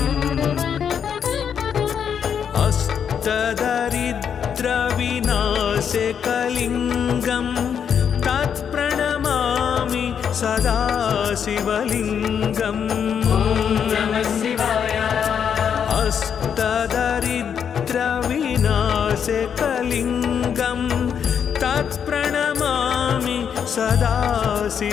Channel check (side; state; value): right; quieter; 7.8 dB